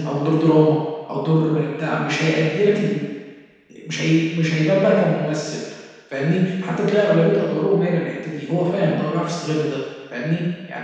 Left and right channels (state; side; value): identical; both; correlation 1.00